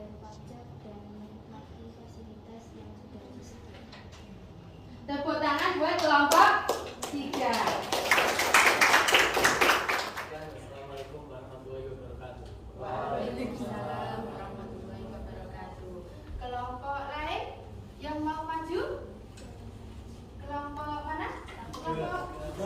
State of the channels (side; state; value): both; identical; correlation 1.00